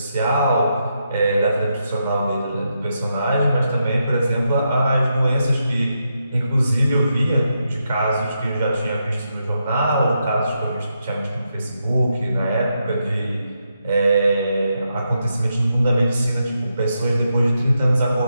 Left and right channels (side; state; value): both; inverted; correlation -0.83